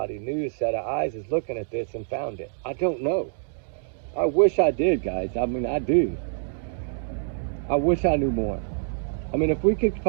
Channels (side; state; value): left; silent; 61 dB below the other